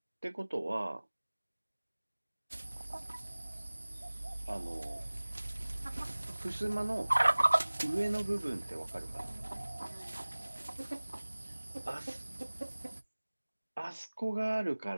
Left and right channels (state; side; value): inverted; both; correlation -1.00